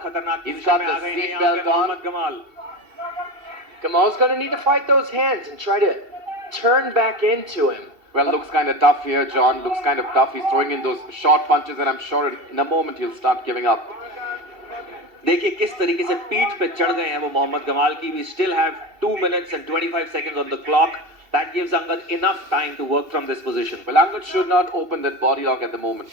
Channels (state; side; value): late; left; 2.7 ms